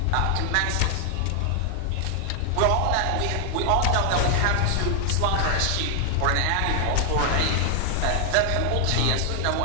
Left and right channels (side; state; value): both; different; correlation 0.00